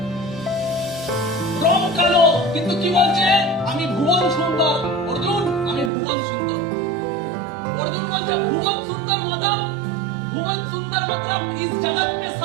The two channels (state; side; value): drops out; left; at 5.9 s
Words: রং কালো কিন্তু কি বলছে, আমি ভুবন সুন্দর। অর্জুন, আমি ভুবন সুন্দর। অর্জুন বলছে ভুবন সুন্দর मतलब, भुवन सुंदर मतलब इस जगत में